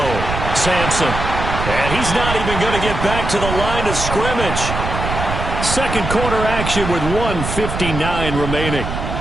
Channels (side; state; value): right; noise; rumble, 4 dB below the sound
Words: Sampson. And he's not even going to get back to the line of scrimmage. Second quarter action with 1:59 remaining.